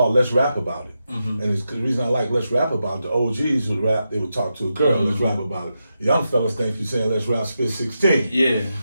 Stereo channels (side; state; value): both; inverted; correlation -0.87